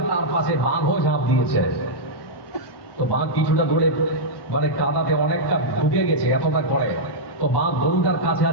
তার পাশে বাঘও ঝাঁপ দিয়েছে। তো বাঘ কিছুটা দূরে কাদাতে অনেকটা ঢুকে গেছে, এতটা করে। তো বাঘ গরুটার কাছে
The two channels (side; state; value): right; late; 1.2 ms